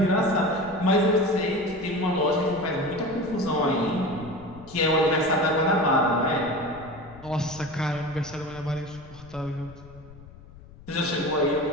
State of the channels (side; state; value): left; noise; rumble, 20 dB below the sound